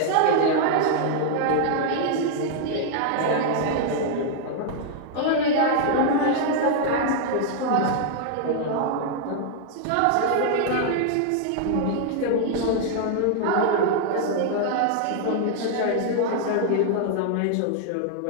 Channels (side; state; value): both; different; correlation -0.01